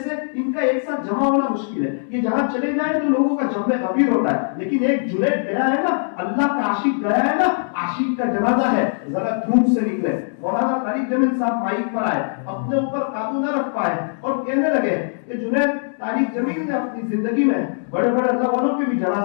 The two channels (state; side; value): silent; right; digital silence